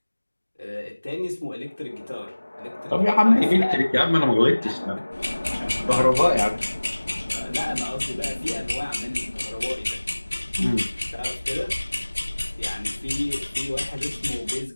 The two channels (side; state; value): both; inverted; correlation -1.00